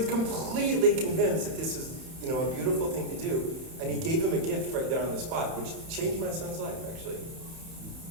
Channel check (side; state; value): left; late; 31 ms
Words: completely convinced that this is, a beautiful thing to do. And he gave him a gift right there on the spot, which changed my son's life, actually.